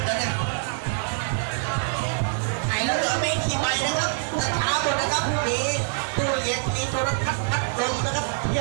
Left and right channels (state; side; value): silent; left; digital silence